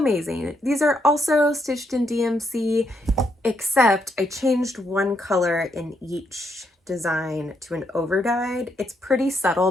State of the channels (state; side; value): normal; both; correlation 0.76